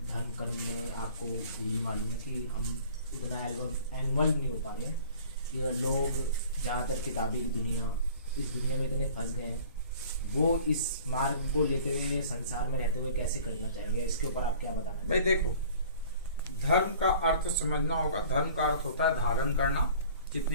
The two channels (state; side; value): inverted; both; correlation -0.49